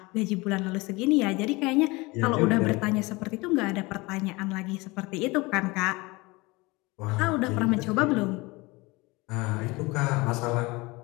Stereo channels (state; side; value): quieter; right; 23.7 dB